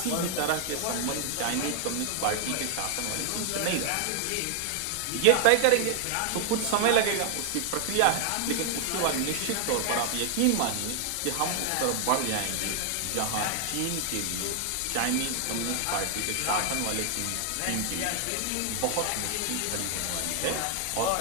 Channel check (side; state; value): both; different; correlation 0.00